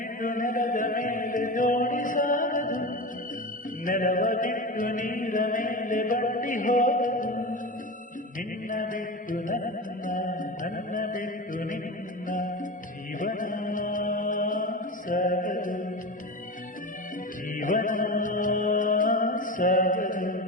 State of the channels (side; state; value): both; normal; correlation 0.25